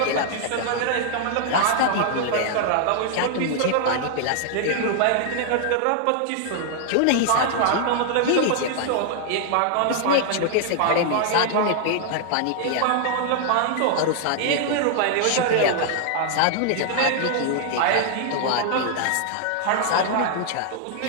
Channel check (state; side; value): different; both; correlation 0.00